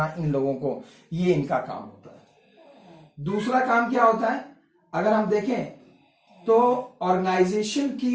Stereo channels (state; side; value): identical; both; correlation 1.00